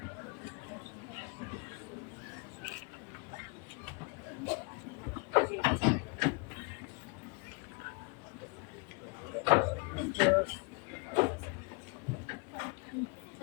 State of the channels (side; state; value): right; quieter; 31.3 dB